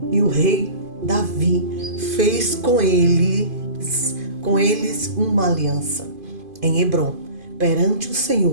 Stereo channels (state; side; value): late; left; 2.5 ms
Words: e o rei Davi fez com eles uma aliança em Hebrom, perante o